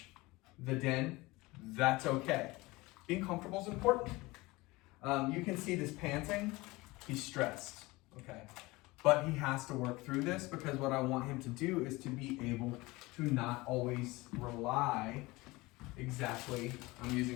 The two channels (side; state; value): right; quieter; 21.9 dB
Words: the den. That's okay. Being comfortable is important. You can see this panting. He's stressed, okay? But he has to work through this because what I want him to do is to be able to not always rely exactly, I'm